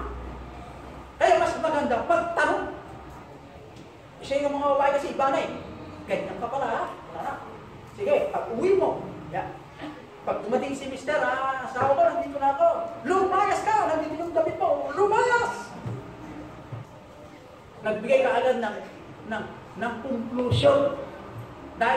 Kaya mas maganda, pagtanong. Isa yung mga babae kasi iba na eh. Ganyan ka pala ha? Wala na. Sige, pag uwi mo. Yan. Pag dumating si mister, asawa ko, nandito na ako. Lumayas ka! Nandito yung damit mo. Lumayas! Nagbigay ka agad ng conclusion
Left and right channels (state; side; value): identical; both; correlation 1.00